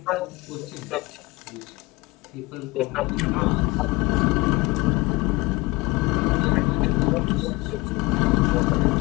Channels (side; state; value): right; quieter; 22.8 dB